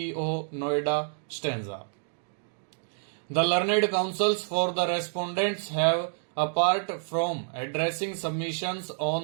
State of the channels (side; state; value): left; silent; digital silence